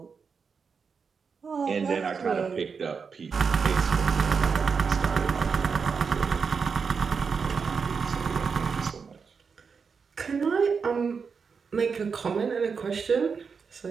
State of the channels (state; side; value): quieter; left; 5.6 dB